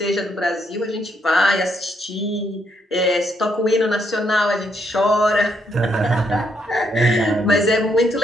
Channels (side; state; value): both; normal; correlation 0.74